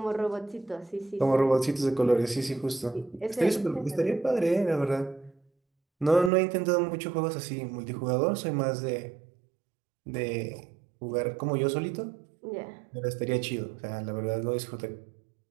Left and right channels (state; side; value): drops out; left; at 6.3 s